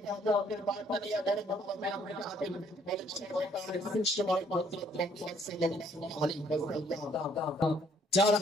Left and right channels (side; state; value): both; normal; correlation 0.64